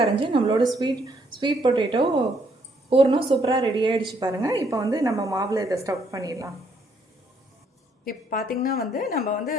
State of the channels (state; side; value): normal; both; correlation 0.70